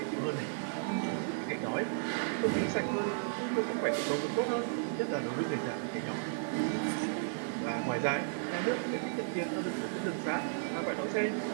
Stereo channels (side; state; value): left; silent; digital silence